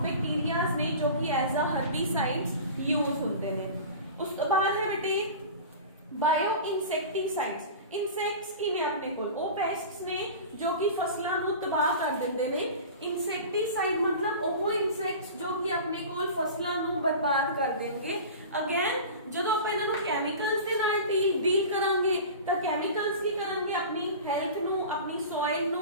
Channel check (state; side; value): inverted; both; correlation -0.35